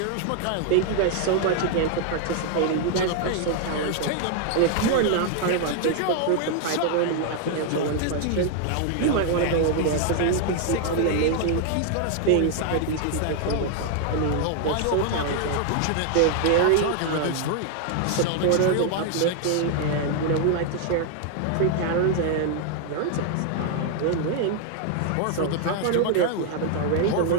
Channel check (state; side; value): different; both; correlation 0.00